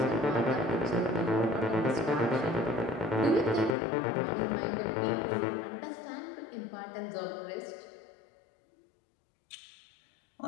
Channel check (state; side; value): drops out; right; at 3.8 s